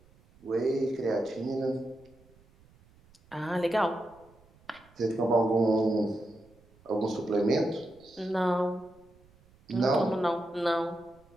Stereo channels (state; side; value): noise; right; rumble, 29 dB below the sound